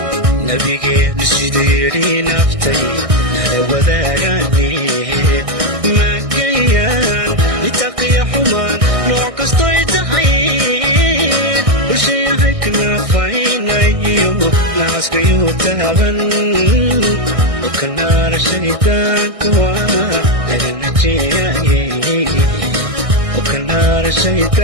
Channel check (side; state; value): left; late; 1.6 ms